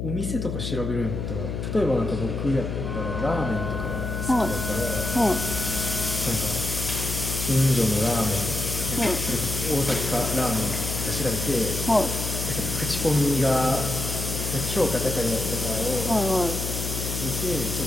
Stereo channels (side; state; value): left; noise; hum, 4 dB below the sound